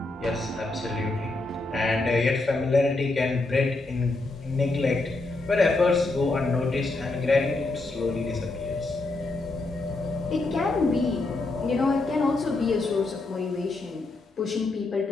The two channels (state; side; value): quieter; right; 3.2 dB